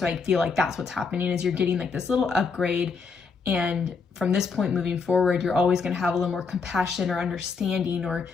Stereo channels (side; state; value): right; quieter; 5.0 dB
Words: I feel like that's what's happening, is you're getting like this little upgrade. And from this point moving forward, you're always going to have a little more compassion or understanding or